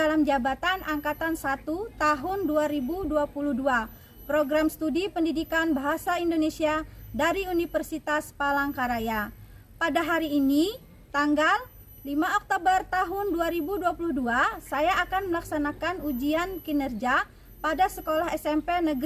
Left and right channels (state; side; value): identical; both; correlation 1.00